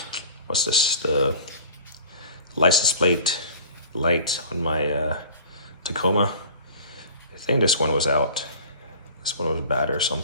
what's this? The license plate light on my Tacoma. think this one was out. This one was bad or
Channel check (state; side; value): inverted; both; correlation -0.44